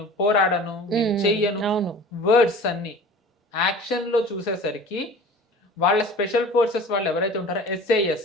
పోరాడను, నేను చెయ్యను, వర్డ్స్ అన్ని. యాక్షన్ లో చూసేసరికి వాళ్ళ స్పెషల్ ఫోర్సెస్ వాళ్ళు ఎవరైతే ఉంటారో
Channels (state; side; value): normal; both; correlation 0.41